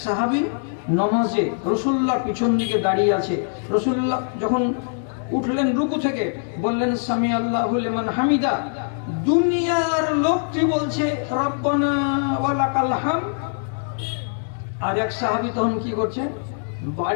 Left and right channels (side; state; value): right; silent; digital silence